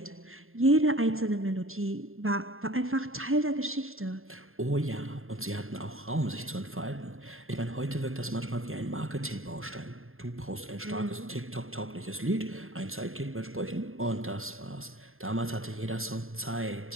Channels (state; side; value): late; left; 0.61 ms